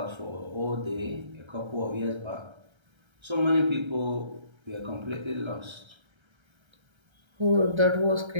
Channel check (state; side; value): late; left; 1.3 ms